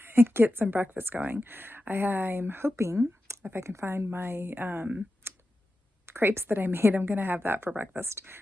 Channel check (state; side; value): normal; both; correlation 0.91